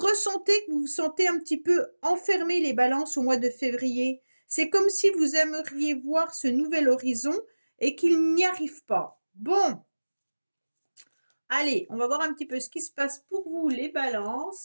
que vous vous sentez un petit peu enfermé, les balances, au mois de février. C'est comme si vous aimeriez voir ce nouvel horizon et qu'il n'y arrive pas. Bon, allez, on va voir un petit peu ce qui se passe pour vous, les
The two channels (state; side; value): inverted; both; correlation -1.00